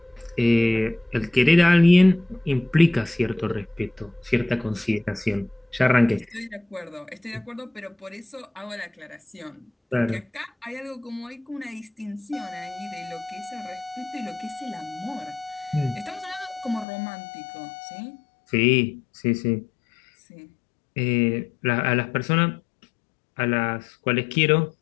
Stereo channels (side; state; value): right; drops out; at 16.9 s